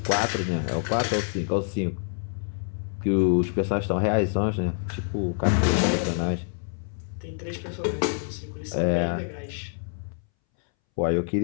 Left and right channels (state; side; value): silent; right; 61 dB below the other